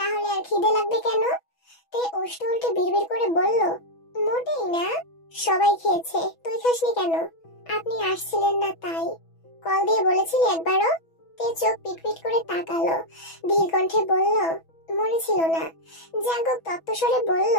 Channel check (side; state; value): right; late; 6.1 ms